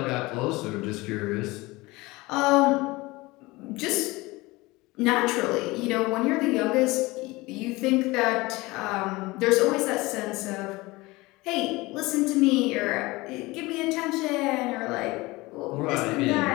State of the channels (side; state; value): right; quieter; 21.7 dB